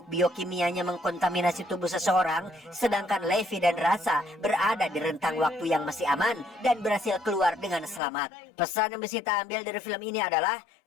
biokimianya mengkontaminasi tubuh seseorang, sedangkan Levi dan Drasa berada di rentang waktu yang masih aman dan berhasil keluar dengan selamat. Pesan yang bisa kita ambil dari film ini adalah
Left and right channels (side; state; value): right; drops out; at 8.0 s